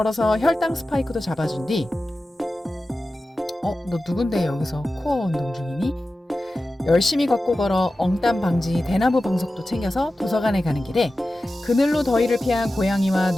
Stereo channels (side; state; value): both; normal; correlation 0.94